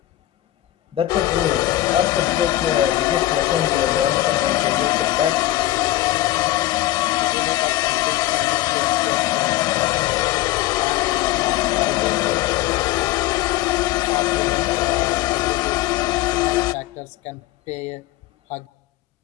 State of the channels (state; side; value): quieter; right; 15.4 dB